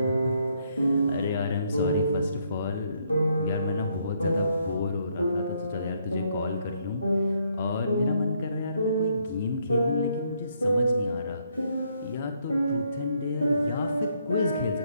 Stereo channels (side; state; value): both; inverted; correlation -0.72